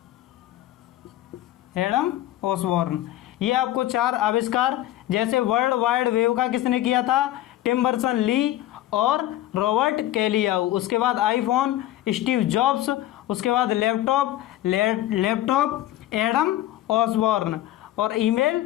Adam Osborne. ये आपको 4 आविष्कार, जैसे वर्ल्ड वाइड वेव का किसने किया था? टिम बर्सन ली और रॉबर्ट कैलियाऊ। उसके बाद आईफोन स्टीव जॉब्स। उसके बाद लैपटॉप एडम ऑसबॉर्न। और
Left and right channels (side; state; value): right; quieter; 14.1 dB